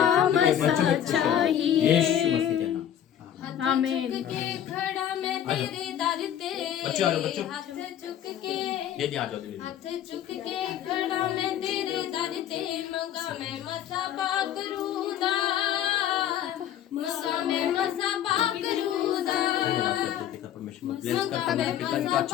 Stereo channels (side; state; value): right; quieter; 10.3 dB